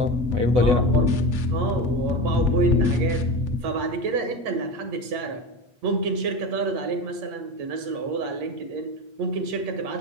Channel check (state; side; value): late; left; 8.3 ms